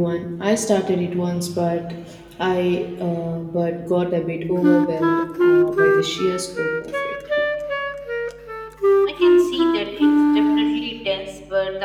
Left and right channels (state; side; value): identical; both; correlation 1.00